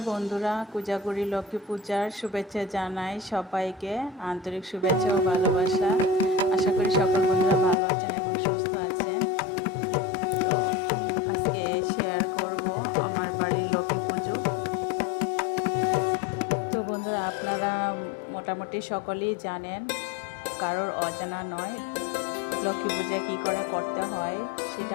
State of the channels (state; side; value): drops out; right; at 7.8 s